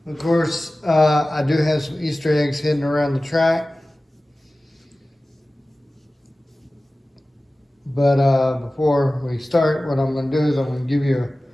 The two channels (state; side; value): normal; both; correlation 0.97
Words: Of course, I do have some Easter eggs hidden around the track. But before we start, what I'm going to do is I'm going to give you a